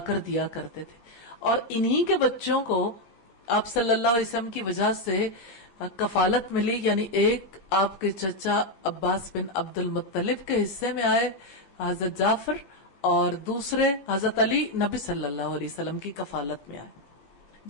کر دیا کرتے تھے، اور انہی کے بچوں کو آپ صلی اللہ علیہ وسلم کی وجہ سے کفالت ملی. یعنی ایک آپ کے چچا عباس بن عبد المطلب کے حصے میں آئے حضرت جعفر، اور دوسرے حضرت علی نبی صلی اللہ علیہ وسلم کی کفالت میں آئے.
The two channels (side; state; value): right; late; 15 ms